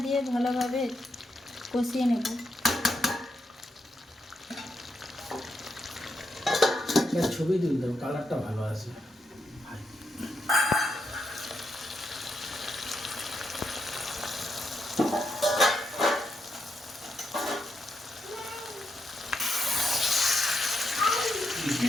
দিয়ে ভালোভাবে কষিয়ে নেব। ছবি দিন, কালারটা ভালো আছে।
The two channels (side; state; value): both; normal; correlation 0.82